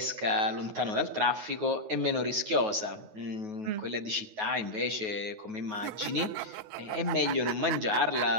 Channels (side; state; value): left; late; 9.4 ms